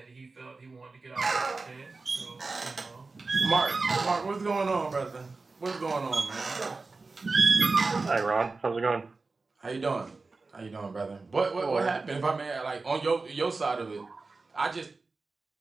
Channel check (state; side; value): quieter; left; 3.8 dB